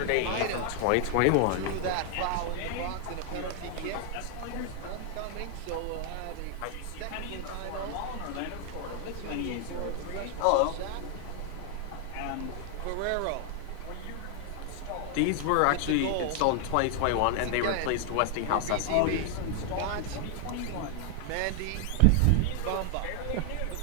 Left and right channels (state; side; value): different; both; correlation 0.00